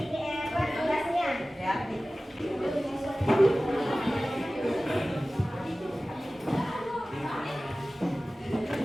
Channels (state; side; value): normal; both; correlation 0.97